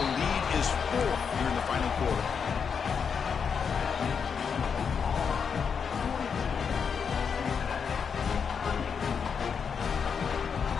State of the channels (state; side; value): quieter; right; 6.5 dB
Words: lead is 4 here in the final quarter.